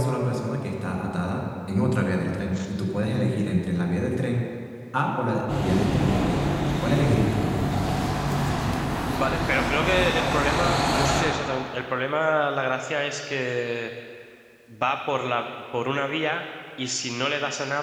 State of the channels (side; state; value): both; identical; correlation 1.00